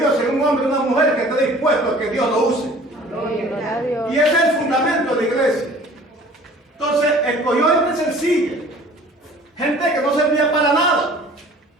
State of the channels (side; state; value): both; normal; correlation 0.49